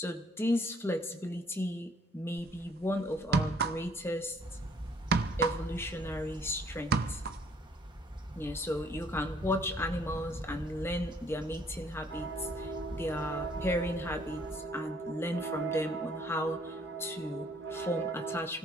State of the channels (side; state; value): both; normal; correlation 0.62